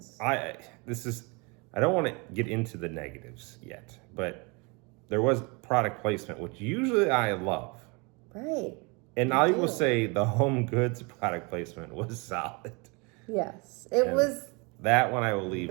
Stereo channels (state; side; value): quieter; left; 29.7 dB